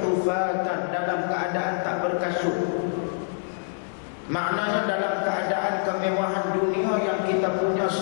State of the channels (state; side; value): silent; right; 61 dB below the other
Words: dalam keadaan tak berkasut. Maknanya dalam keadaan kemewahan dunia yang kita punya